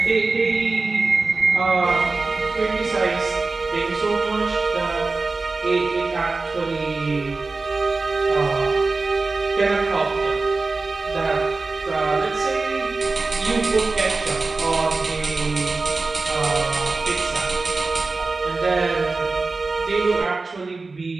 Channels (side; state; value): left; quieter; 3.8 dB